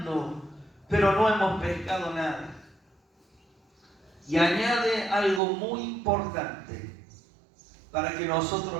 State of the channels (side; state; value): left; drops out; at 5.4 s